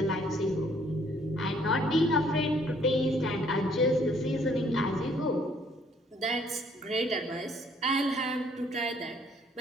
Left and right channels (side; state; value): both; normal; correlation 0.63